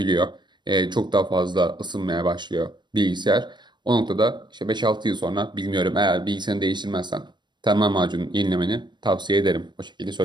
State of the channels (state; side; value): late; left; 0.22 ms